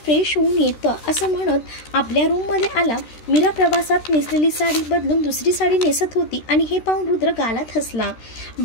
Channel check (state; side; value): late; right; 13 ms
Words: होऊन येतं असं म्हणत आपल्या रूममध्ये आला। मीरा प्रवासात नेसलेली साडी बदलून दुसरी साडी नेसत होती आणि हे पाहून रुद्र गालात हसला।